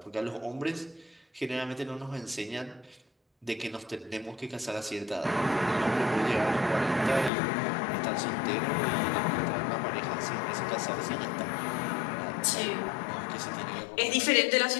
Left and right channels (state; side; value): drops out; right; at 7.3 s